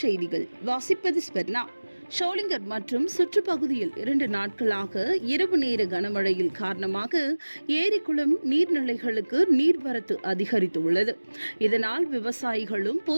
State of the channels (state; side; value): inverted; both; correlation -1.00